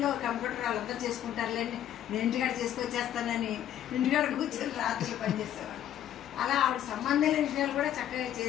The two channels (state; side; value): quieter; right; 11.0 dB